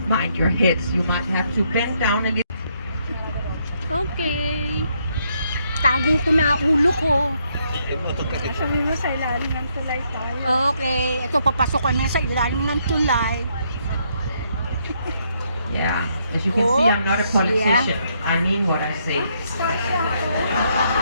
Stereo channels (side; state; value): both; inverted; correlation -0.74